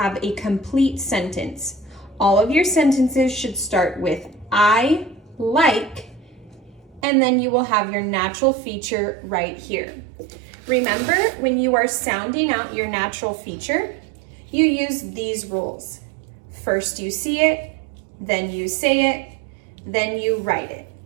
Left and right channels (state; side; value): drops out; left; at 7.1 s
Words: a complete sentence. All of your sentences should start with I like, and then you will have your natural feature right here. Remember, when you are sounding out your natural feature, you use these rules. First you see it, then you say it, then you write it.